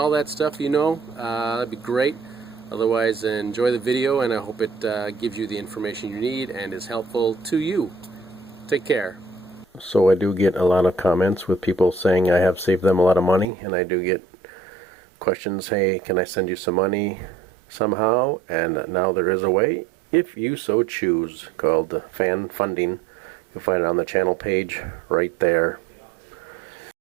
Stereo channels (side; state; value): left; drops out; at 13.5 s